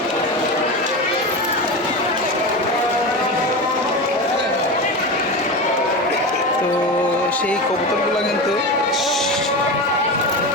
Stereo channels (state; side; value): normal; both; correlation 0.23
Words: তো সেই কবুতরগুলো কিন্তু